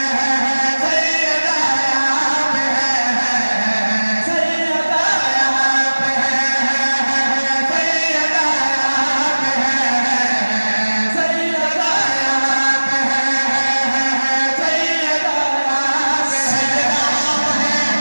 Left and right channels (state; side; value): inverted; both; correlation -1.00